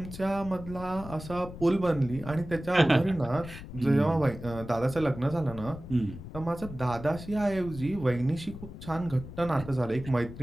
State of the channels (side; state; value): left; noise; rumble, 12 dB below the sound